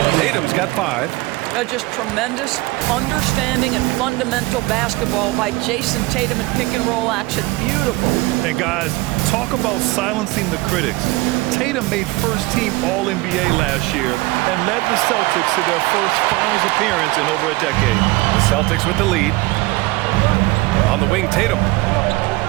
Tatum's got 5. Just tremendous understanding and fundamental basketball by Jason Tatum in pick-and-roll action. Beautiful. And guys, talk about silencing the critics. Tatum made first-team All-NBA last year and led the Celtics to their first finals appearance in over a decade. The Celtics with the lead. On the wing, Tatum.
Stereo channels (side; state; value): left; quieter; 21.4 dB